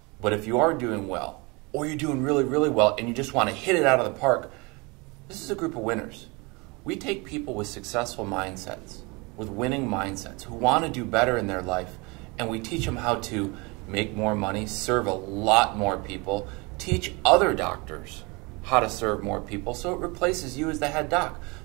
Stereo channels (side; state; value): left; quieter; 27.4 dB